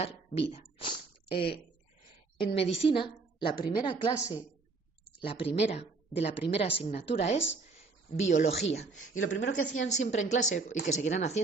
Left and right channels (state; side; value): quieter; left; 4.0 dB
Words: vida. En medicina, la primera clase, de la primera asignatura es biología. Y lo primero que hacían siempre en clase, y que seguirán